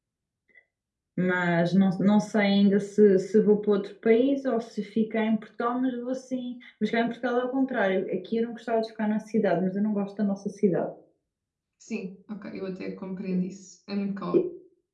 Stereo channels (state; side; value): identical; both; correlation 1.00